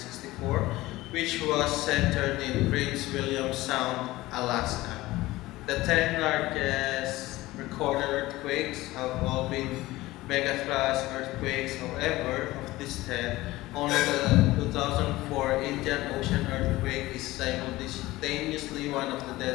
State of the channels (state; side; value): quieter; right; 18.3 dB